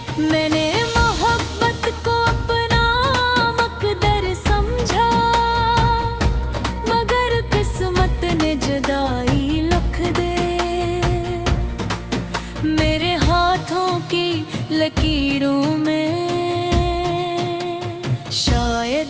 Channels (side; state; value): both; identical; correlation 1.00